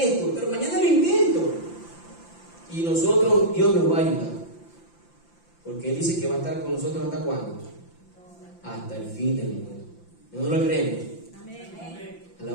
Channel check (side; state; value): right; late; 5.9 ms